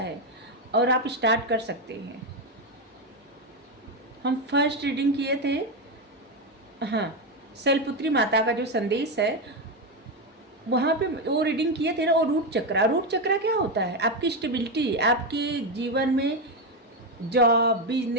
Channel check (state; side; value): normal; both; correlation 0.09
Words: और आप स्टार्ट कर सकते हैं। हम फर्स्ट रीडिंग किए थे, हाँ, शैलपुत्री माता का जो संदेश है, वहाँ पे वो रीडिंग किए थे ना। और रूट चक्रा, रूट चक्रा क्या होता है? आपकी स्टेबिलिटी, आपके जीवन में जॉब,